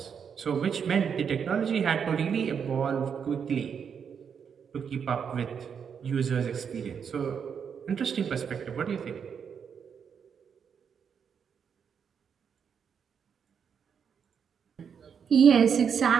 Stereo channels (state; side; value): quieter; left; 7.1 dB